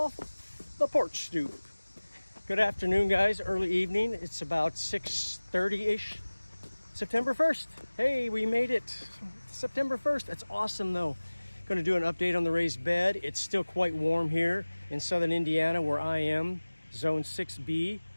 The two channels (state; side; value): inverted; both; correlation -1.00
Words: the porch stoop. Good afternoon, guys. Early evening. It's about 6:30-ish. September 1st. Hey, we made it. September 1st. That's awesome, though. Going to do an update on the raised bed. It's still quite warm here in southern Indiana where I am, zone 6B.